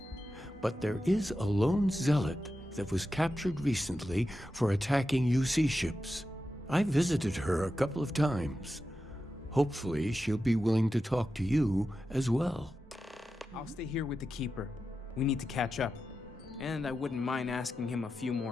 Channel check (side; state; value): both; normal; correlation 0.91